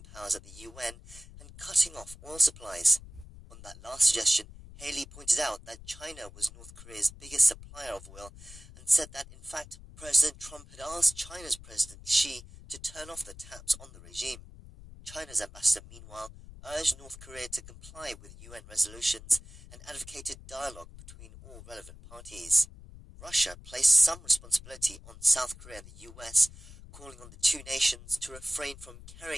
powers at the UN and cutting off oil supplies. On that last suggestion, Haley pointed out that China was North Korea's biggest supplier of oil and said that, in fact, President Trump had asked China's President Xi to turn off the taps on the regime. China's ambassador, meanwhile, urged North Korea to comply with UN resolutions and advocated dialogue between all relevant parties. Russia placed some responsibility on South Korea and the US, calling on the two nations to refrain from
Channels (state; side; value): noise; left; rumble, 18 dB below the sound